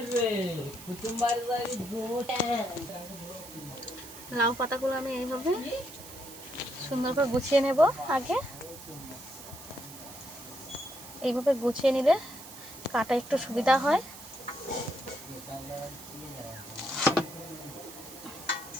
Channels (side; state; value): right; noise; hiss, 15 dB below the sound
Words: লাউ পাতাগুলো আমি এইভাবে সুন্দর করে গুছিয়ে নেব। আগে এইভাবে গুছিয়ে নিলে কাটা একটু সুবিধা হয়।